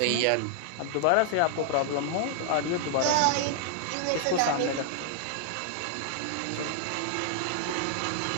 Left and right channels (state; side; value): different; both; correlation 0.00